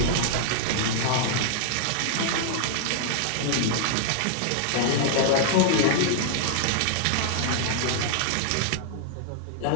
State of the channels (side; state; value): both; different; correlation -0.01